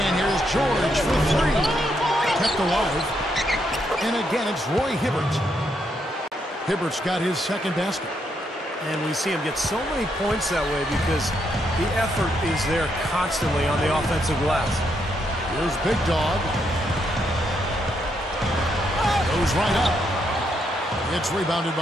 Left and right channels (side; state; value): both; normal; correlation 0.78